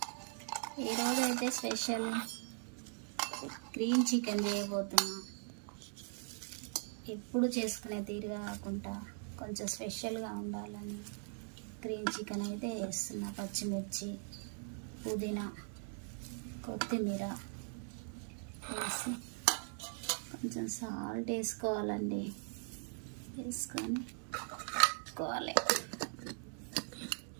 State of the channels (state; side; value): silent; left; 51 dB below the other